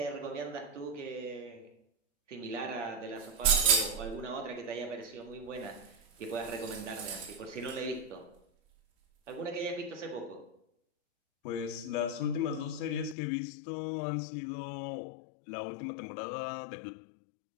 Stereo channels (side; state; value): right; drops out; at 13.2 s